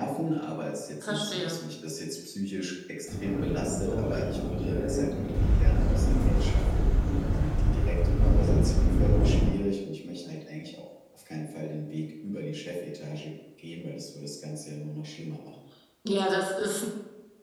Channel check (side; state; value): both; identical; correlation 1.00